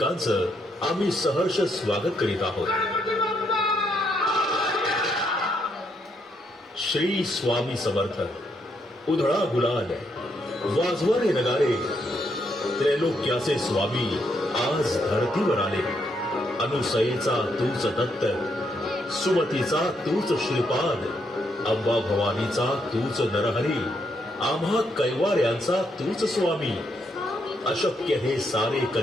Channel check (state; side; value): normal; both; correlation 0.76